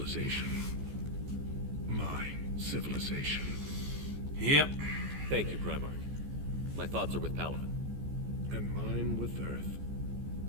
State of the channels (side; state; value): left; late; 14 ms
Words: My civilization. Yep. Thank you, Primark. My thoughts are with Palaven. And mine with Earth.